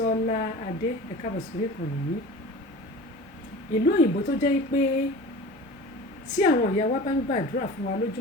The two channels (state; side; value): normal; both; correlation 0.37